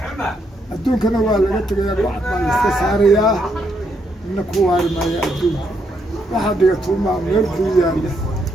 adduunkana waa laga tegayaa bacad baa la iska saarayaa ina ku waari maayo adduunka waxaa dhigatuumaa meel buu yaalla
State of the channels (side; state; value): both; normal; correlation 0.76